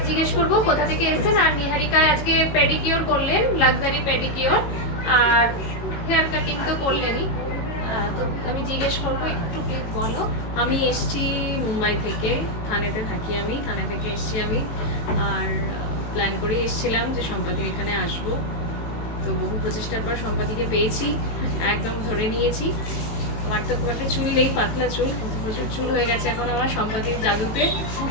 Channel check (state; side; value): late; right; 18 ms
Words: জিজ্ঞেস করবো কোথা থেকে এসেছেন। আর নিহারিকা আজকে পেডিকিওর করলেন, লাক্সারি পেডিকিওর, আর হেয়ার কাটিং তো করলেনই। তো আমি জিজ্ঞেস করবো, একটু প্লিজ বলো। আমি এসছি মুম্বাই থেকে, থানেতে থাকি আমি, থানে থেকে এসছি আমি। আর প্ল্যান করে এসছিলাম যে সম্পাদির এখানে আসবো। তো বহু প্রচেষ্টার পর সম্পাদিকে পেয়েছি, একদম ধরে নিয়েছি। আমার তো খুব একটা চুল নেই, পাতলা চুল, কিন্তু প্রচুর চুল হয়ে গেছে এখন আমার সম্পাদির জাদুতে।